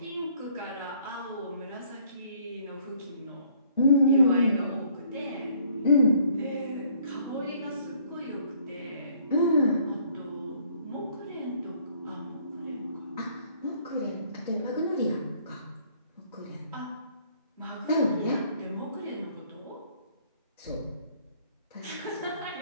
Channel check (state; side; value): inverted; both; correlation -0.62